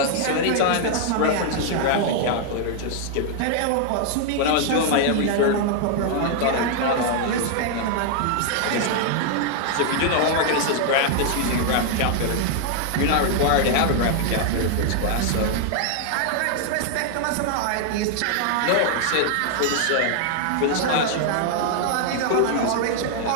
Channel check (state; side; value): different; both; correlation 0.00